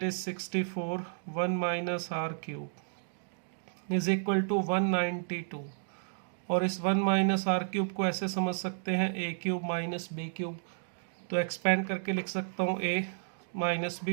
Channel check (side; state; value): left; silent; digital silence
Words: is 64 1 - r cube = 192, और इस 1 - r क्यूब को ऐसे समझ सकते हैं a क्यूब - b क्यूब। तो एक्सपेंड करके लिख सकता हूँ a - b ×